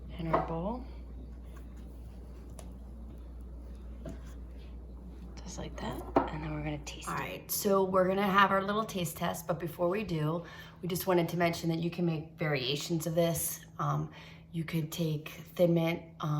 In our bowl. Just like that. And then we're gonna taste it. All right, so we're gonna have our little taste test, but before we do, we just wanted to mention that you can make variations of this. You could take Thin Mint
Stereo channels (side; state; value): both; identical; correlation 1.00